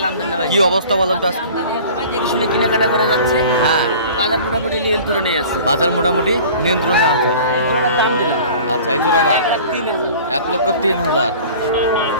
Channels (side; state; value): both; inverted; correlation -0.43